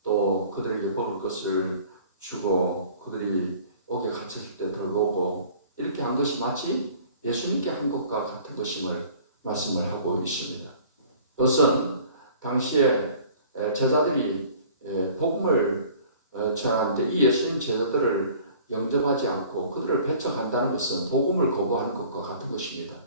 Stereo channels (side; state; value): both; inverted; correlation -0.50